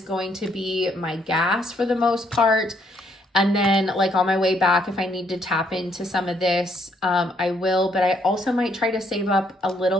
going to be my gas for the most part. And then like on my way back, if I need to tap into some of this, I will. But I also might try to save up a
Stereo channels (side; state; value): both; normal; correlation 0.71